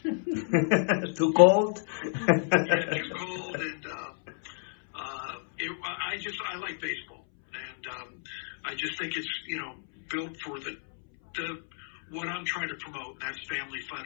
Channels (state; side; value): silent; right; 58 dB below the other